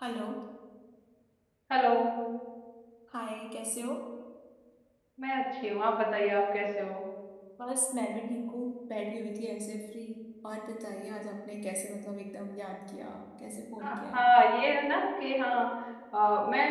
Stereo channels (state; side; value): identical; both; correlation 1.00